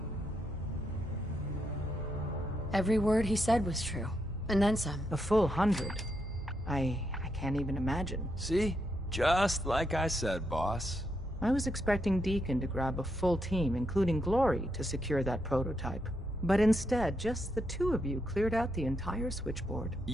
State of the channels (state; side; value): normal; both; correlation 0.80